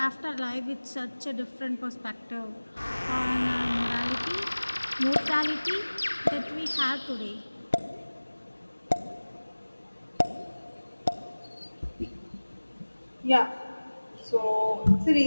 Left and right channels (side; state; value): both; inverted; correlation -1.00